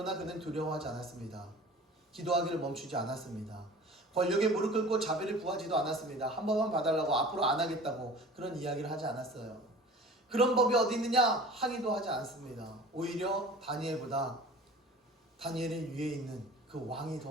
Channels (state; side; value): normal; both; correlation 0.42